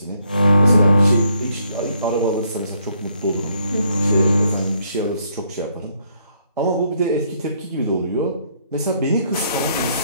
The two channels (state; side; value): inverted; both; correlation -0.72